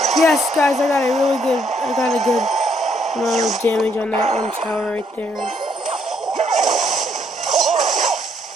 Yes, guys, I got a good amount of damage on that one tower right there.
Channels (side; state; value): both; normal; correlation 0.71